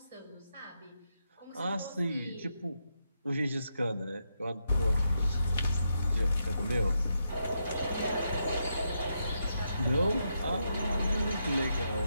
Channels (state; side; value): inverted; both; correlation -0.82